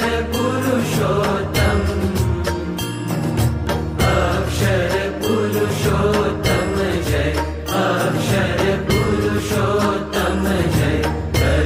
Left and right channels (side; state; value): both; identical; correlation 1.00